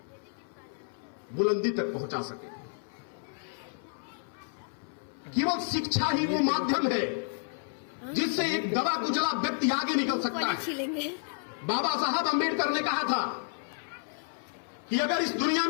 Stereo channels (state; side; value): silent; right; 57 dB below the other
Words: बुलंदी तक पहुंचा सके। केवल शिक्षा ही वो माध्यम है जिससे एक दबा कुचला व्यक्ति आगे निकल सकता है। बाबा साहब अंबेडकर ने कहा था कि अगर इस दुनिया